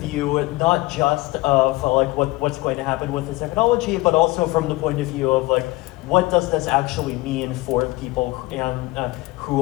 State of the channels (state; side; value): quieter; right; 20.8 dB